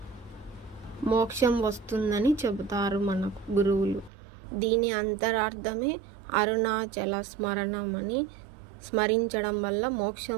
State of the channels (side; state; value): left; drops out; at 4.1 s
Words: మోక్షం వస్తుందని చెబుతారు మనకు గురువులు. దీని అంతరార్థమే అరుణాచల స్మరణమని, స్మరించడం వల్ల